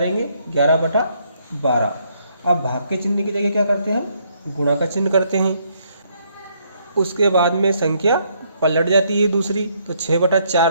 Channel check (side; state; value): both; inverted; correlation -0.71